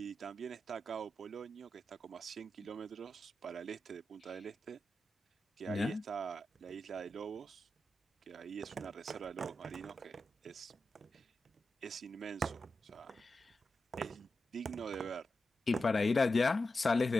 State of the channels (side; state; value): both; normal; correlation 0.90